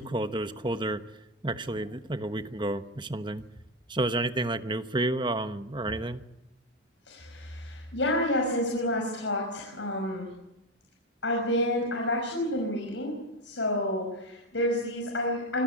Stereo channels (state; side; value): normal; both; correlation 0.12